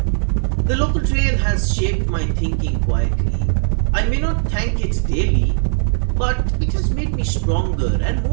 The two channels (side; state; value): left; silent; digital silence